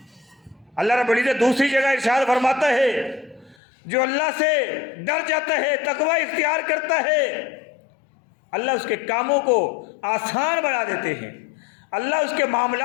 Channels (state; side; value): drops out; right; at 3.6 s